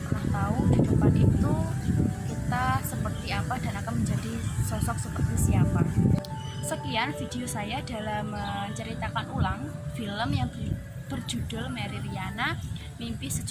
pernah tahu di depan itu kita seperti apa dan akan menjadi sosok seperti siapa. Sekian video saya dalam menceritakan ulang film yang berjudul Mary Riana Mimpi $1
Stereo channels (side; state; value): both; identical; correlation 1.00